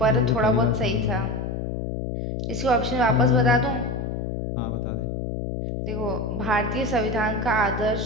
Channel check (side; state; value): left; noise; hum, 3 dB below the sound